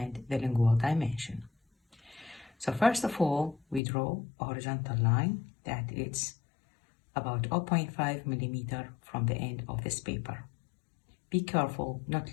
the lingual dimension. So first of all, we draw a horizontal line that is about 0.5 millimeter from the end of this paper. Be careful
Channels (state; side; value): drops out; right; at 3.8 s